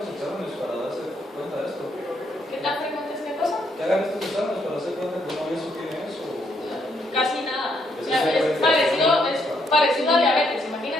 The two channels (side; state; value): both; normal; correlation 0.74